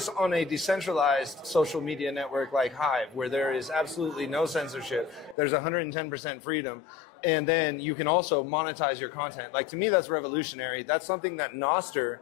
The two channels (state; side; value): drops out; right; at 5.4 s